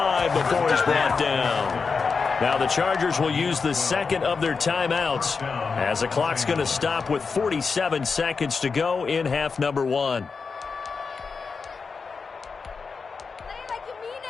before he's brought down. Now the Chargers will use the second of their timeouts as the clock's going to stop with 47 seconds to go in half number 1.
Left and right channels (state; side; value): quieter; right; 5.0 dB